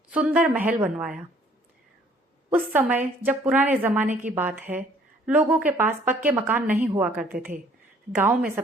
सुंदर महल बनवाया। उस समय जब पुराने जमाने की बात है, लोगों के पास पक्के मकान नहीं हुआ करते थे। गांव में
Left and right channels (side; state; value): both; normal; correlation 0.58